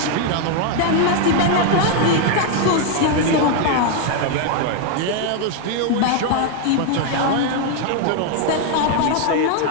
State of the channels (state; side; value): different; both; correlation 0.01